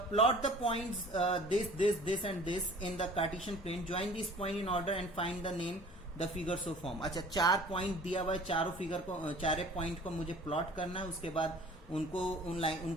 plot the points this and this in the Cartesian plane. Join these point in order and find the name the figure so form. अच्छा, 4 पॉइंट दिया हुआ है, चारे पॉइंट को मुझे प्लॉट करना है, उसके बाद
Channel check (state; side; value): normal; both; correlation 0.47